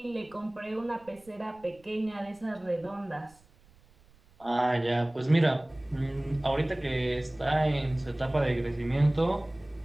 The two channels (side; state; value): right; noise; rumble, 28 dB below the sound